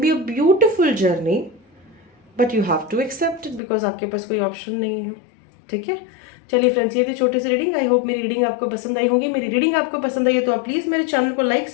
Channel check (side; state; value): right; drops out; at 3.6 s